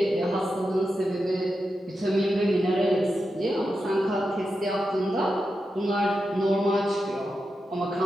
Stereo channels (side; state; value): both; normal; correlation 0.89